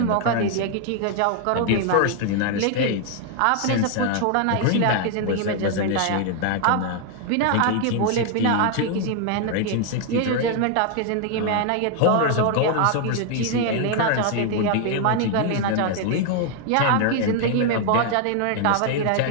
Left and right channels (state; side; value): different; both; correlation 0.00